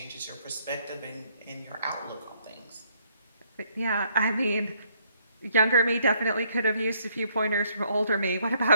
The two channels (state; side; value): inverted; both; correlation -0.68